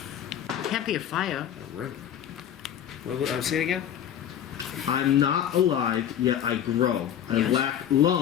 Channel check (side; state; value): right; quieter; 9.9 dB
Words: Can't be a fire. A riddle. What? Say it again. I'm not alive, yet I grow. I Yes. lack